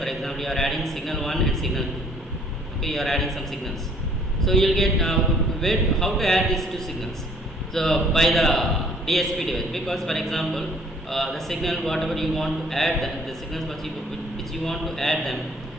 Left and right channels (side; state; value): both; normal; correlation 0.59